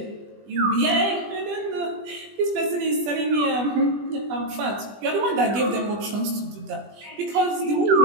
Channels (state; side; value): late; left; 20 ms